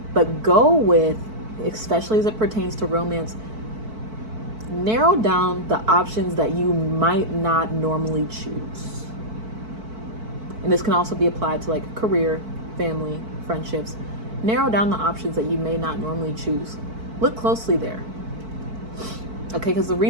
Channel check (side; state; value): left; late; 4.5 ms